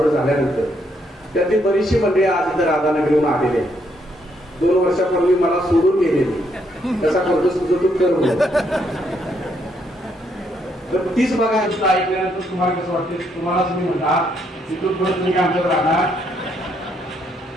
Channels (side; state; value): both; normal; correlation 0.73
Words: झाल्यानंतर, त्यातली बरीचशी मंडळी आज इथं राधानगरीहून आलेले आहेत. 2 वर्षापूर्वी मला सोडून गेलेली, कसा करतो तुझं तू करून. तर तीच बघा ऐकल्यानंतर तुम्हाला कसं वाटते, तुम्हालाच मी म्हणता तिथून परत तुम्ही आमच्यात राहणार.